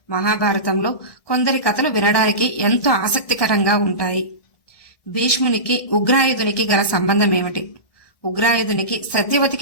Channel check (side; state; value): right; late; 1.6 ms